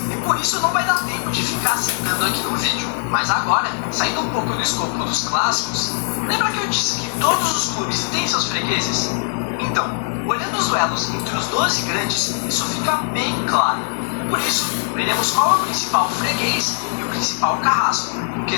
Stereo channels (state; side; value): silent; right; 65 dB below the other